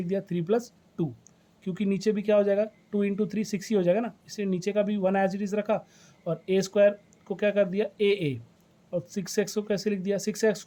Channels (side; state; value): both; identical; correlation 1.00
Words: दिया 3 + 2, क्योंकि नीचे भी क्या हो जाएगा 2 इंटू 3 6 ही हो जाएगा ना, इसलिए नीचे का भी 1 एज इट इज़ रखा और a² को क्या कर दिया a और 6x को कैसे लिख दिया